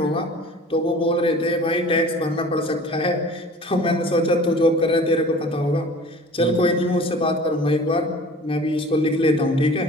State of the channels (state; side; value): normal; both; correlation 0.44